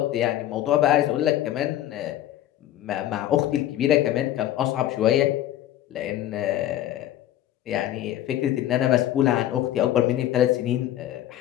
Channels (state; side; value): quieter; right; 12.7 dB